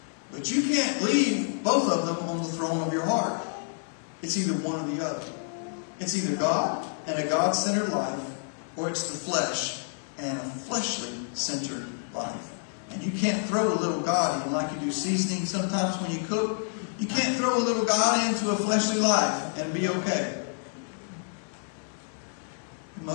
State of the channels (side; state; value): right; silent; digital silence